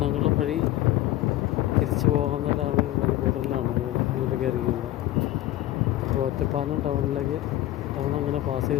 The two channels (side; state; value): right; quieter; 14.9 dB